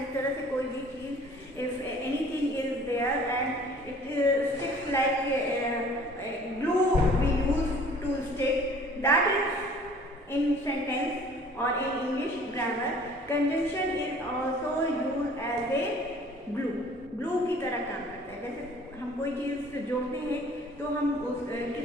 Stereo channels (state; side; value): normal; both; correlation 0.51